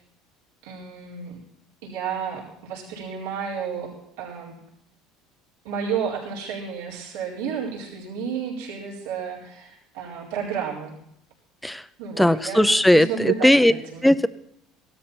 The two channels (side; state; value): both; normal; correlation 0.85